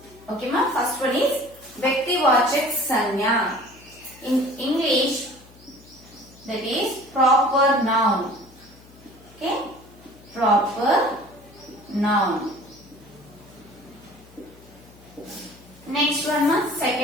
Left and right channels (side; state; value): left; noise; hum, 24 dB below the sound